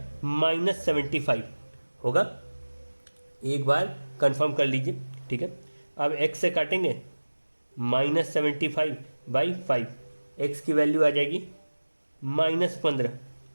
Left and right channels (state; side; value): inverted; both; correlation -1.00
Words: -75 होगा। एक बार कंफर्म कर लीजिए, ठीक है। अब x से काटेंगे, -75/5, x की वैल्यू आ जाएगी -15।